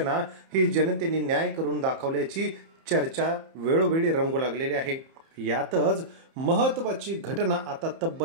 ही जनतेने न्याय करून दाखवल्याची चर्चा वेळोवेळी रंगू लागलेली आहे। यातच महत्त्वाची घटना आता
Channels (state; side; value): late; left; 30 ms